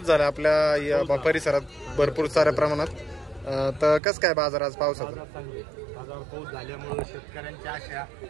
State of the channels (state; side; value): drops out; left; at 4.0 s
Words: झाला आपल्या या परिसरात भरपूर साऱ्या प्रमाणात. तर कसं काय बाजार आज पावसाचा? बाजार पाऊस झाल्यामुळे शेतकऱ्यांच्या आशा